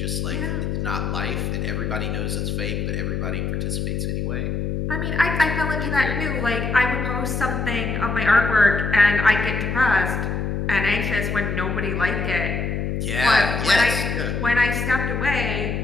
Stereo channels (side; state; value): left; noise; hum, 1 dB below the sound